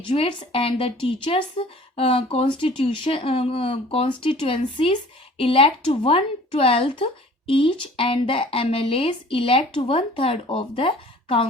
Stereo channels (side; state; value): both; normal; correlation 0.48